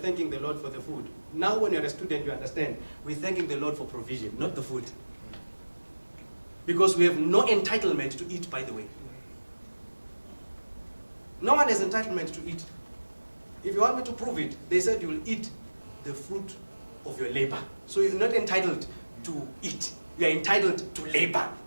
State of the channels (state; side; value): inverted; both; correlation -1.00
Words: the Lord for the food. Now when you're a student, you understand. We're thanking the Lord for provision, not the food. Because we have no entitlement to eat, by the way. No one has entitlement to eat. If you want me to prove it, they said you will eat the fruit of your labor. So you're not entitled to eat. You are entitled to labor.